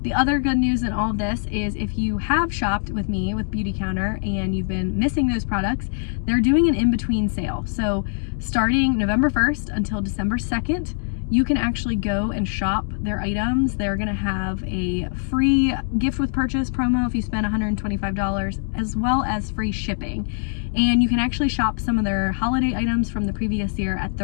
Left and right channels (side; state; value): right; silent; digital silence